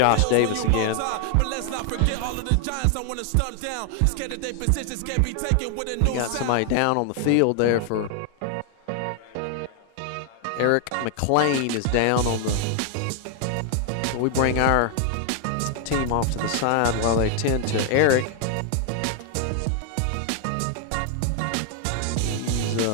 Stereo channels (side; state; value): both; different; correlation 0.00